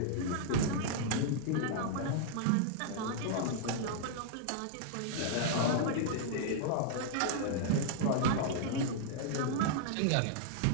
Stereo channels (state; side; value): different; both; correlation -0.01